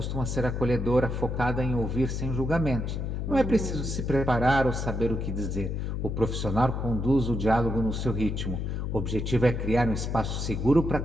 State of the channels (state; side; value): noise; left; hum, 2 dB below the sound